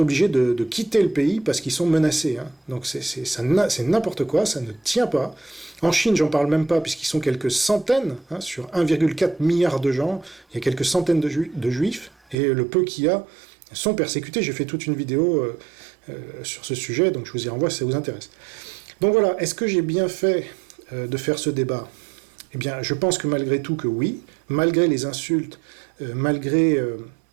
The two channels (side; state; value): left; drops out; at 12.4 s